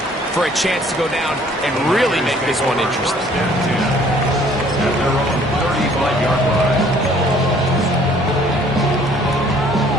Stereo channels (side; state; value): both; normal; correlation 0.58